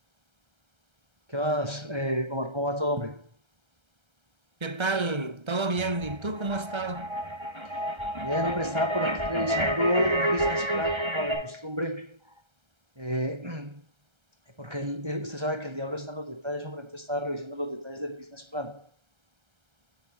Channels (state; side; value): late; left; 1.3 ms